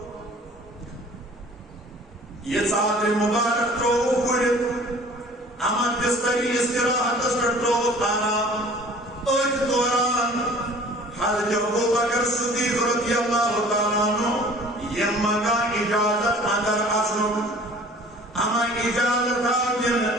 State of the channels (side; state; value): both; normal; correlation 0.48